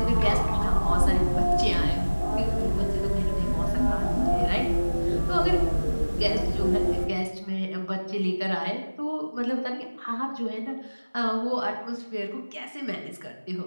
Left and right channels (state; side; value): inverted; both; correlation -1.00